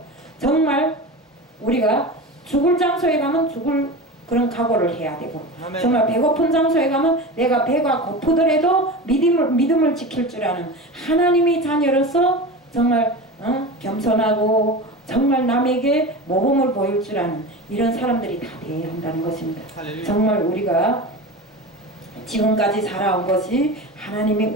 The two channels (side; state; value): both; normal; correlation 0.28